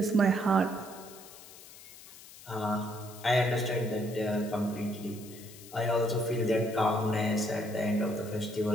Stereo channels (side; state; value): left; noise; hiss, 18 dB below the sound